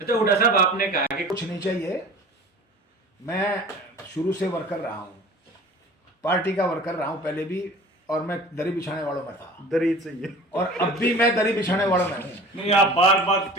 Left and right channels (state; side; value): normal; both; correlation 0.41